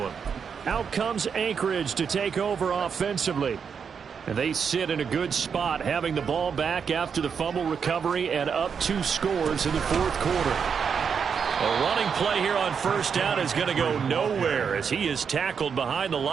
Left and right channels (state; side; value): quieter; left; 6.6 dB